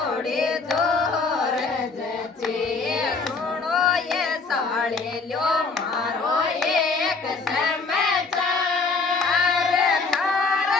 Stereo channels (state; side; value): quieter; right; 4.3 dB